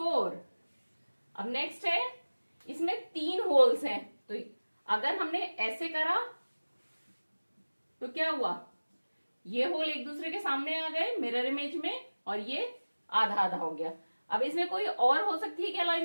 अब नेक्स्ट है, इसमें 3 होल्स हैं। तो अगर हमने ऐसे करा तो क्या हुआ, ये होल एक दूसरे के सामने आ गए मिरर इमेज में और ये आधा आधा हो गया। अब इसमें कोई और हो सकती है क्या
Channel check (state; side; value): inverted; both; correlation -1.00